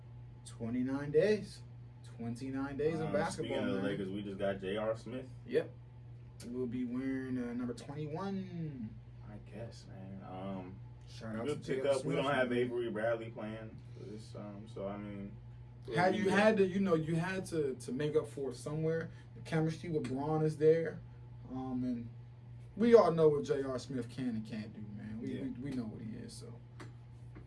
29 days. 29 days of basketball. Speaking of the Lakers, we just got J.R. Smith. Yep. We'll be wearing number 21. I guess, man. Shout out good to pickup. Smith. We don't have Avery Bradley playing for this, so I mean. You had to make up for it somewhere. The chemistry with Braun is there, and we all know what J.R. Smith can and can't do, man. We know what he is, so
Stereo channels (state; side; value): identical; both; correlation 1.00